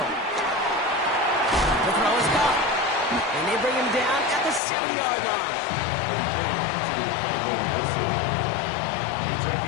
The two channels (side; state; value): right; drops out; at 4.6 s